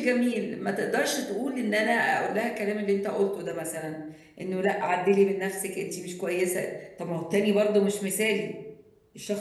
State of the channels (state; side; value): identical; both; correlation 1.00